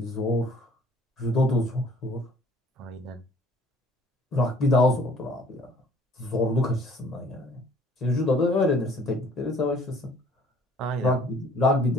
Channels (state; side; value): normal; both; correlation 0.56